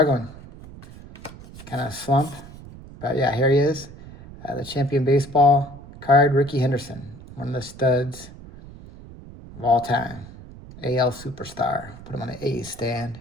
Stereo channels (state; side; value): noise; right; rumble, 17 dB below the sound